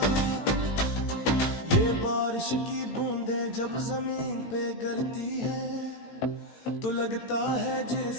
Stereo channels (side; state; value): right; late; 18 ms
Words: ये बारिश की बूंदें जब जमीन पे गिरती है, तो लगता है